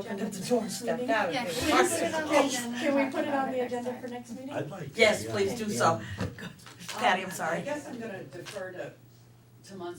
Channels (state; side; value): identical; both; correlation 1.00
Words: agenda up the for door and next stepped meeting? out. Yeah, They can were we parked put it on the there. agenda? Can we put it on the agenda for next meeting? I'd like to, Yes, yeah. please do so. Patty, I'm sorry. I guess I'm gonna defer to